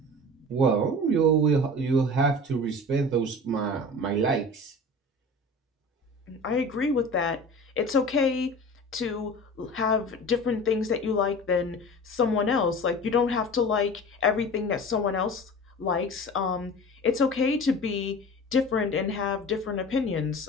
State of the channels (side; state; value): both; normal; correlation 0.37